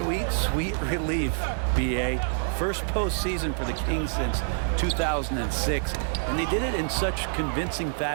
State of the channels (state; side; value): silent; left; digital silence